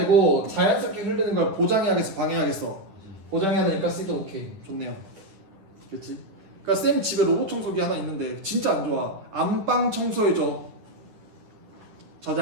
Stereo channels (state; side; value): late; left; 9.8 ms